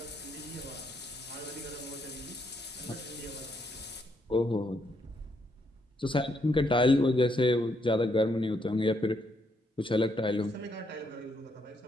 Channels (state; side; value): normal; both; correlation 0.75